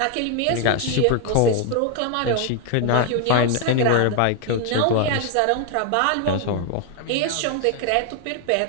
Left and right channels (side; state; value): both; different; correlation 0.00